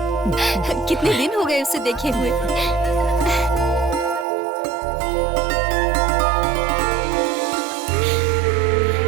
कितने दिन हो गए उसे देखे हुए।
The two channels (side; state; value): left; drops out; at 4.2 s